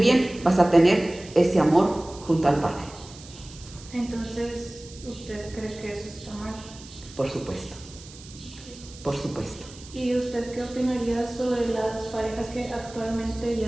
vas a tener ese amor junto al Padre. Entonces, ¿usted cree que eso está mal? Por supuesto. Por supuesto. ¿Y usted qué opinaría sobre las parejas que actualmente,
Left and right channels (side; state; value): right; noise; hiss, 19 dB below the sound